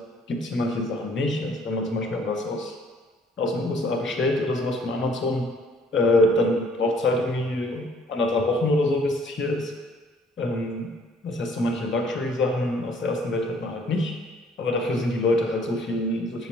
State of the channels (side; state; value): both; normal; correlation 0.60